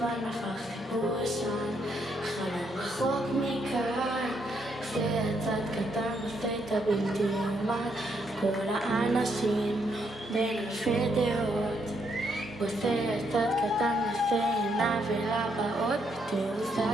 הפך חיבור ישן, חלום רחוק מכאן, עושה יצאת קטן עושה את הבלתי יאומן, כל האנשים בין אלפי דעות, עושה יצאת קטן עושה עינה ולבאות, בתעוזה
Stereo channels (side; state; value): both; normal; correlation 0.75